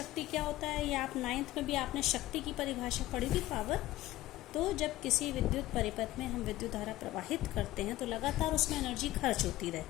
क्या होता है, ये आप 9th में भी आपने शक्ति की परिभाषा पढ़ी थी, पावर। तो जब किसी विद्युत परिपथ में हम विद्युत धारा प्रवाहित करते हैं तो लगातार उसमें एनर्जी खर्च होती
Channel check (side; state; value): right; quieter; 16.2 dB